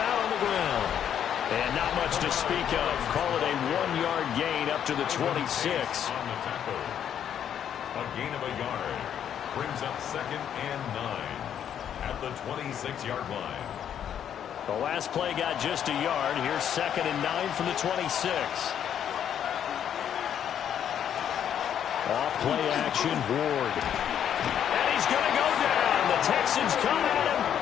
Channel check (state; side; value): quieter; right; 9.3 dB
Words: on the ground. And not much to speak of. Call it a 1-yard gain up to the 26. A gain of a yard brings up 2nd and 9 at the 26-yard line. The last play got just a yard. Here's 2nd and 9 from the 26. Off play action, Ward. And he's going to go down. The Texans come at him